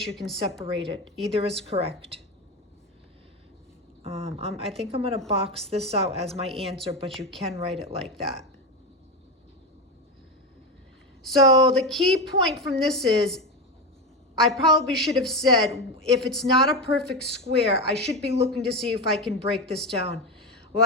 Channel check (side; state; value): both; normal; correlation 0.16